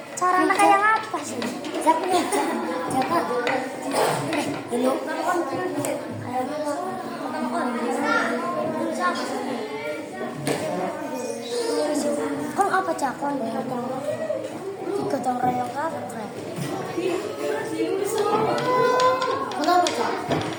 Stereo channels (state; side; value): identical; both; correlation 1.00